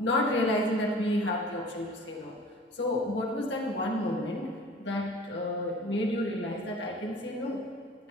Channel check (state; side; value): normal; both; correlation 0.45